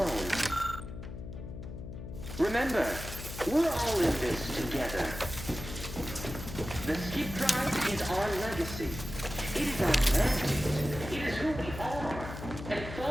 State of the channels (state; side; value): noise; left; hum, 10 dB below the sound